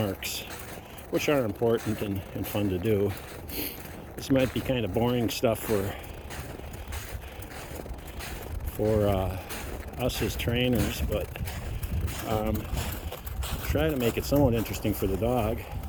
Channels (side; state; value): both; identical; correlation 1.00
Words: which are important and fun to do. This might be kind of boring stuff for us as trainers, but try to make it somewhat interesting for the dog.